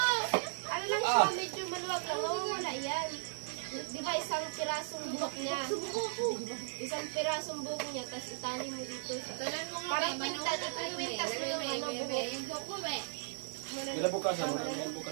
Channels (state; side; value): silent; left; digital silence